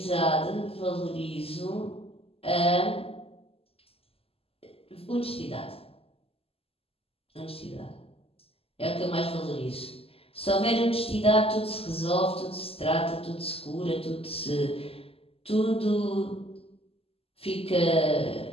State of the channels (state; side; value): late; right; 0.28 ms